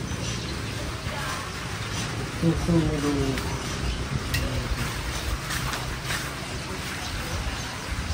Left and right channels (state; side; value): identical; both; correlation 1.00